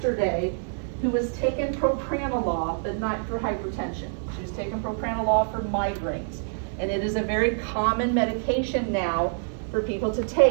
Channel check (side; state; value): left; silent; 56 dB below the other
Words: who was taking propranolol, but not for hypertension. She was taking propranolol for migraines. And it is a very common medication now for people to